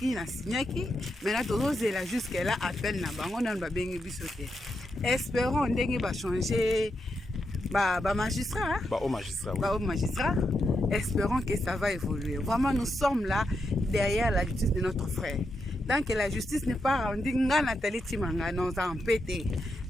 na signaki maintenant tozozela jusqu'à là appel na bango na ba bengi biso te espérons ndenge ba changer magistrat. Au magistrat, oui. Au magistrat. Espérons que ça va évoluer. Vraiment, nous sommes là derrière la justice de notre frère. Tant que la justice n'est pas rendue, Nathalie Timanga nous a empêté.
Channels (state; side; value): normal; both; correlation 0.84